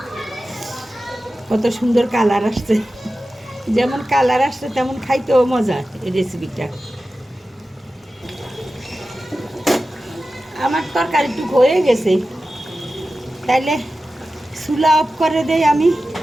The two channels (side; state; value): both; normal; correlation 0.94